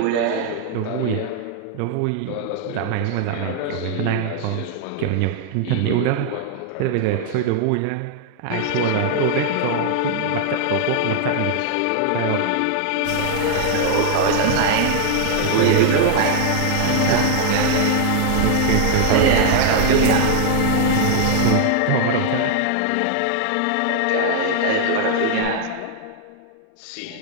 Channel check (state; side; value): different; both; correlation 0.00